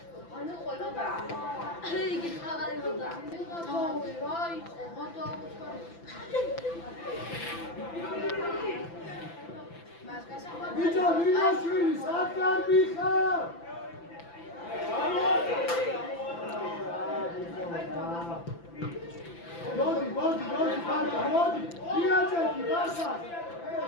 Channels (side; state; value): right; late; 5.9 ms